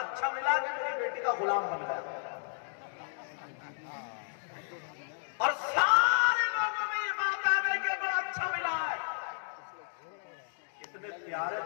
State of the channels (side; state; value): right; silent; digital silence